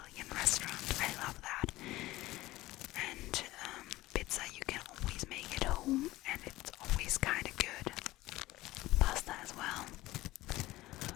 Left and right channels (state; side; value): quieter; right; 17.8 dB